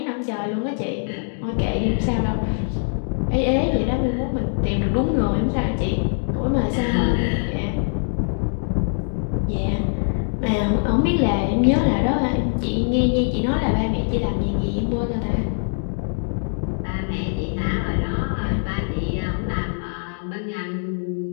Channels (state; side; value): silent; right; 64 dB below the other